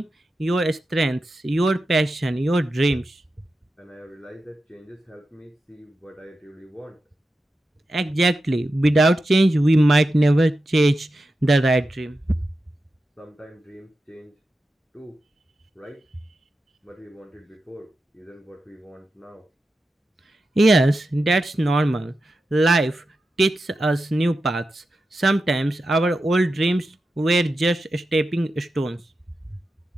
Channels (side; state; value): both; normal; correlation 0.90